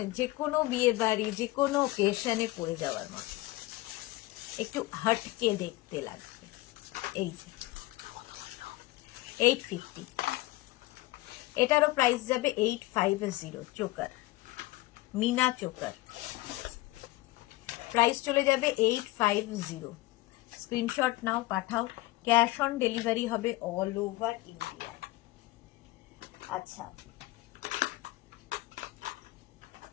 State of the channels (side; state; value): right; quieter; 19.1 dB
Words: যে কোনো বিয়ে বাড়ি, যে কোনো ওকেশনে পরে যাওয়ার মতো, একটু হটকে দেখতে লাগবে। এই যে 850, এটারও প্রাইস যাবে 850। চোকার, মিনা চোকার, প্রাইস চলে যাবে 850। স্ক্রিনশট নাও, পাঠাও। ক্যাশ অন ডেলিভারি হবে অল ওভার ইন্ডিয়া। আচ্ছা,